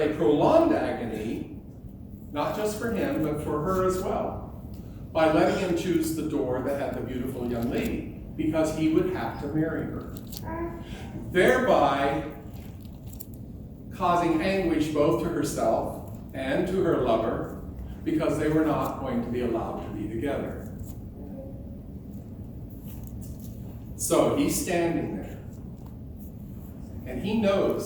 a prolonged agony, not just for him, but for her as well, by letting him choose the door that had the beautiful young lady, because he would have to marry her, thereby causing anguish both to herself and to her lover, because they were not going to be allowed to be together. So he's standing there, and he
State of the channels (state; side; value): identical; both; correlation 1.00